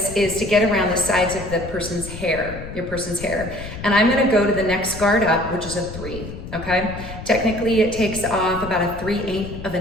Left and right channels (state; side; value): noise; left; rumble, 11 dB below the sound